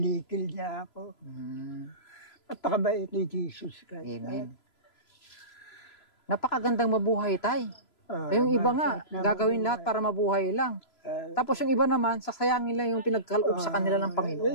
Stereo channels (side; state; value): right; late; 3.0 ms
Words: niya ako. At pakabait ni Jesus Christ. Amen. Napakagandang mabuhay tayo. Yung iba nga, gagawin lahat para mabuhay lang. Tapos yung iba naman, sasayangin lang yung pinagkaloob sa kanila ng Panginoon.